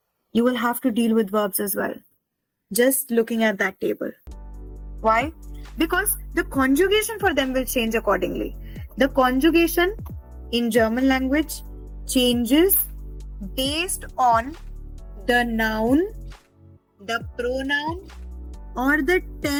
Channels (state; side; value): identical; both; correlation 1.00